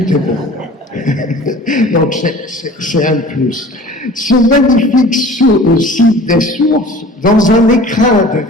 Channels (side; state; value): both; normal; correlation 0.44